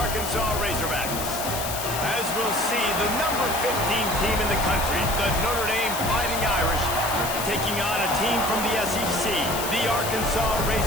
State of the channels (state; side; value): noise; left; hiss, 5 dB below the sound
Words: Razorbacks. As we'll see, the number 15 team in the country, the Notre Dame Fighting Irish, taking on a team from the SEC, the Arkansas